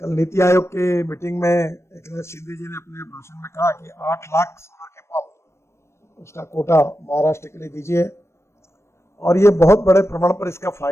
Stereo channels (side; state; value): right; late; 0.13 ms